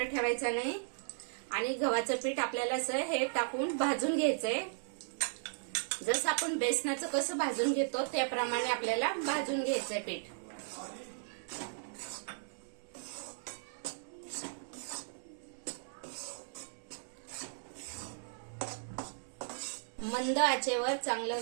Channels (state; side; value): silent; left; digital silence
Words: ठेवायचं नाही. आणि गव्हाचं पीठ आपल्याला असं हे टाकून भाजून घ्यायचंय. जसं आपण बेसनाचं कसं भाजून घेतो त्याप्रमाणे आपल्याला भाजून घ्यायचंय पीठ. मंद आचेवर चांगलं